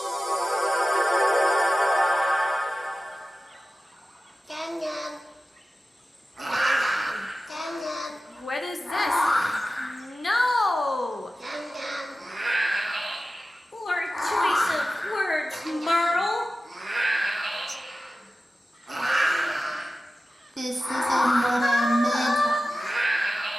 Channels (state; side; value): normal; both; correlation 0.95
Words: What is this? No! Poor choice of words, Merle. This is